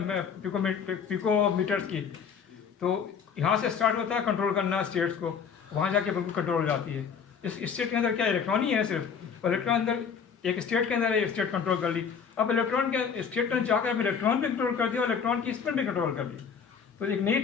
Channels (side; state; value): right; quieter; 6.7 dB